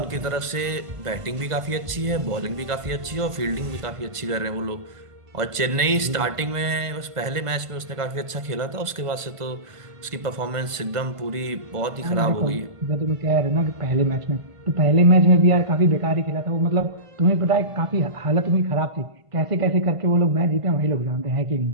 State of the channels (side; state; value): left; late; 1.5 ms